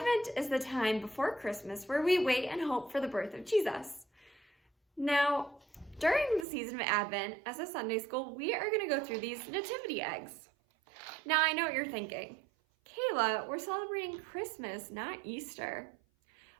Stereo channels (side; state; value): left; drops out; at 6.5 s